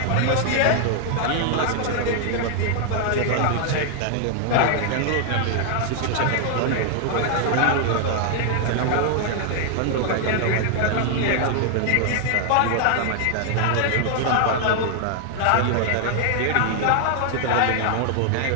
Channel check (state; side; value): different; both; correlation 0.00